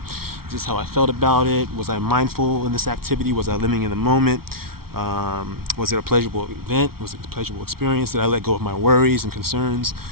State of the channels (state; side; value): late; left; 0.94 ms